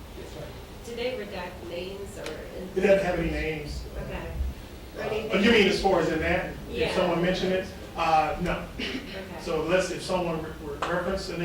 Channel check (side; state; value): both; identical; correlation 1.00